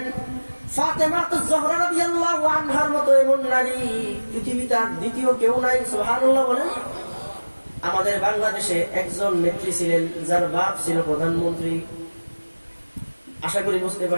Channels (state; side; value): inverted; both; correlation -1.00